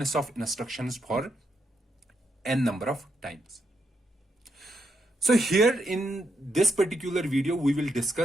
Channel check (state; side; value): normal; both; correlation 0.80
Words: of instructions for n number of times. So here in this particular video, we will